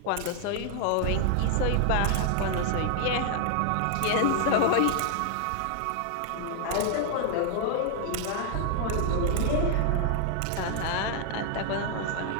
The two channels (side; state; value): both; different; correlation 0.00